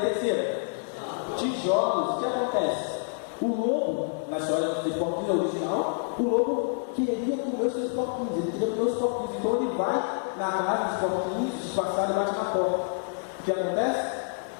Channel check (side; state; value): right; silent; 60 dB below the other